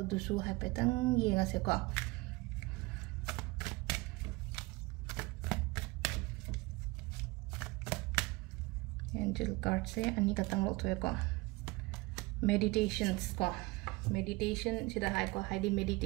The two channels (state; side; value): quieter; left; 23.1 dB